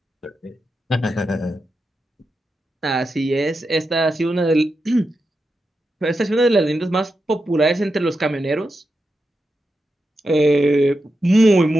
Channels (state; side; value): normal; both; correlation 0.88